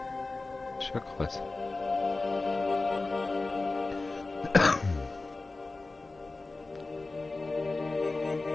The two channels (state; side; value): quieter; right; 3.4 dB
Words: Ist ja krass.